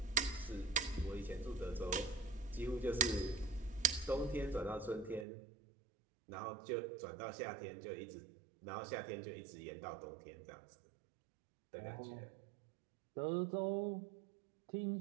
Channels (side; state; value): left; drops out; at 5.2 s